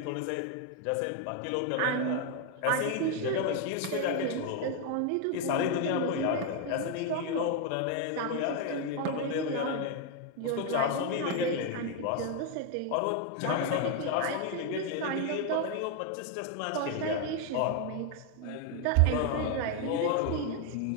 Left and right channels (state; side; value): different; both; correlation 0.01